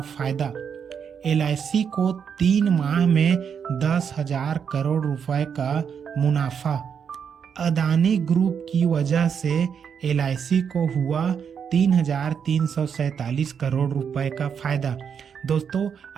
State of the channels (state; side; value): quieter; left; 7.2 dB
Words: फायदा, एलआईसी को 3 माह में 10,000 करोड़ रुपए का मुनाफा। अदानी ग्रुप की वजह से एलआईसी को हुआ 3,347 करोड़ रुपए का फायदा। दोस्तों,